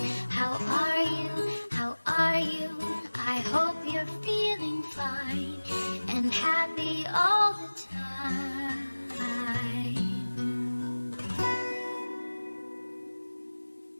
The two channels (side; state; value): both; inverted; correlation -1.00